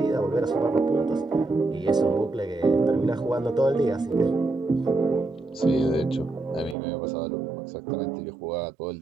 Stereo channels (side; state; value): left; drops out; at 6.8 s